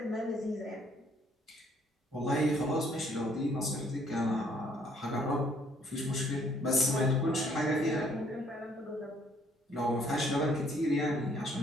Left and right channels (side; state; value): both; normal; correlation 0.64